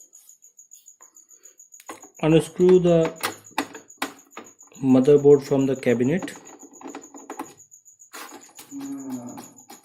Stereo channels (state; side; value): identical; both; correlation 1.00